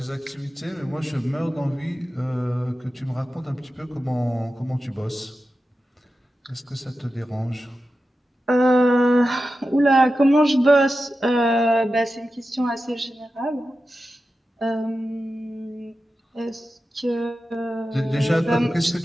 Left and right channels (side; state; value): both; normal; correlation 0.92